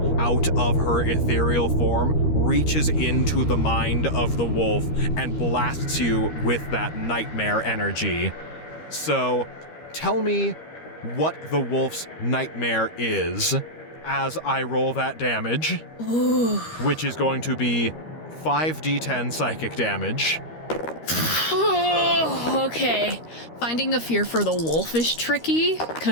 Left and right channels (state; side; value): late; right; 13 ms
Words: out of her ethereal form, reaches into the mind of the wolf and blasts you with that nightmare energy. So, tell me what the wolf's nightmare is as I roll that damage. which is going to be 5d10 psychic damage. Okay. Finding a fear for the wolf is tricky